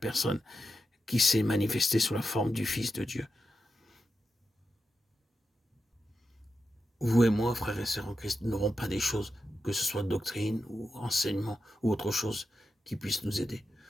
qui s'est manifestée sous la forme du Fils de Dieu. Vous et moi, frères et sœurs en Christ, n'aurons pas des choses, que ce soit doctrine ou enseignement ou autre chose, qui puisse nous aider.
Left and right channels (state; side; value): normal; both; correlation 0.88